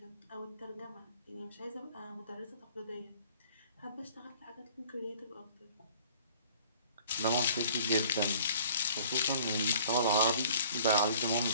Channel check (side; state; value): both; inverted; correlation -0.52